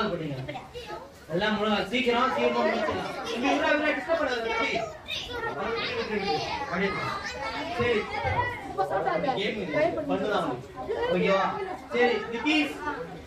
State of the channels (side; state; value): both; identical; correlation 1.00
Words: படிங்க. எல்லாம் மூணாவது சீக்கிரம் சீக்கிரம் முடிச்சிடலாம். இவ்வளவு டிஸ்டர்ப் பண்ணாத தம்பி. சரி கேம் பண்ணலாம். ஓகேவா? சரி நிதிஷ்